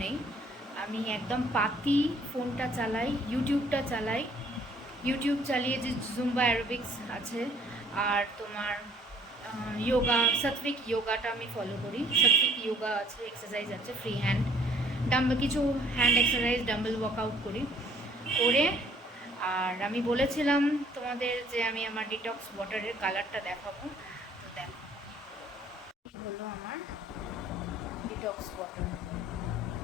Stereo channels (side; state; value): both; normal; correlation 0.58